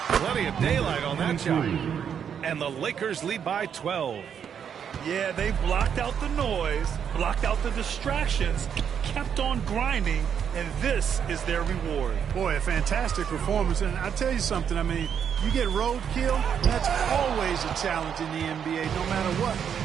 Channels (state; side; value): quieter; left; 8.0 dB